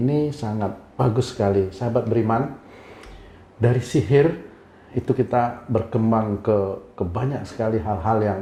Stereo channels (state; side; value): identical; both; correlation 1.00